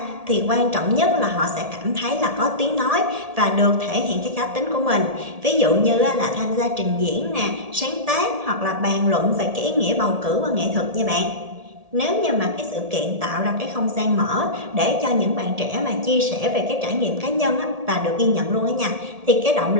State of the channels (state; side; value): late; left; 1.7 ms